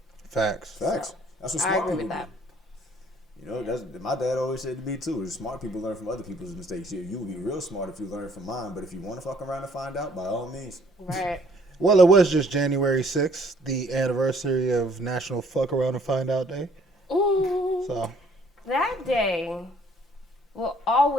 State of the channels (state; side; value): normal; both; correlation 0.61